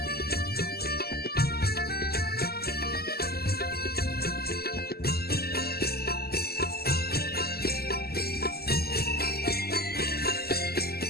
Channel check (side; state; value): right; late; 0.46 ms